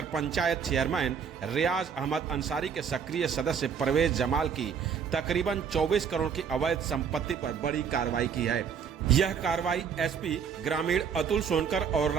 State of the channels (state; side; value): quieter; left; 7.0 dB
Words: पंचायत चेयरमैन रियाज अहमद अंसारी के सक्रिय सदस्य परवेज जमाल की तकरीबन 24 करोड़ की अवैध संपत्ति पर बड़ी कार्रवाई की है। यह कार्रवाई SP ग्रामीण अतुल सोनकर और